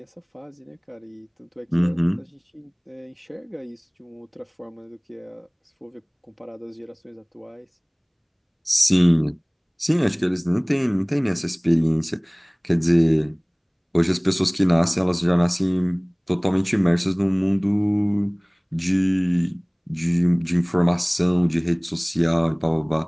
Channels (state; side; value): identical; both; correlation 1.00